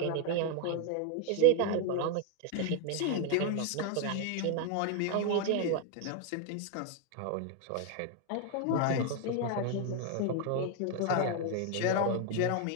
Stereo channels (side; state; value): both; different; correlation 0.01